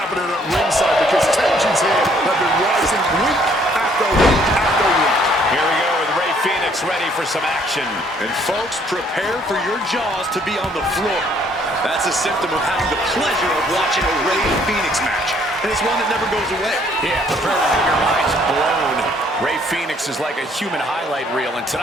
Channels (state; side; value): normal; both; correlation 0.64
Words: at ringside, because tensions here have been rising week after week after week. Here we go with Rey Fénix ready for some action. And folks, prepare for your jaws to be on the floor. That's a symptom of having the pleasure of watching a Rey Fenix match. And it's one that never goes away. Yeah, prepare to have your minds blown. Rey Fenix is like a human highlight reel, and